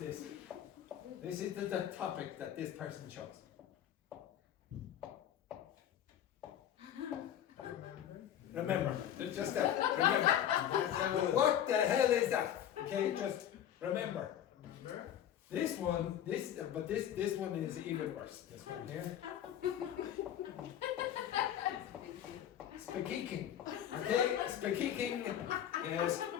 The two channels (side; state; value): right; quieter; 10.5 dB